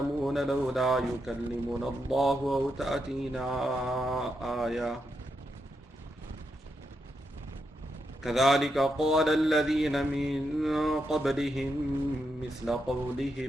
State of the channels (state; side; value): normal; both; correlation 0.83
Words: لولا يكلمنا الله أو تأتينا آية كذلك قال الذين من قبلهم مثل